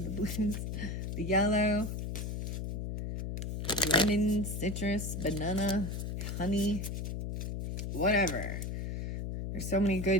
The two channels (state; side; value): noise; left; hum, 3 dB below the sound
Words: blues, the yellow, lemon, citrus, banana, honey, whatever. There's so many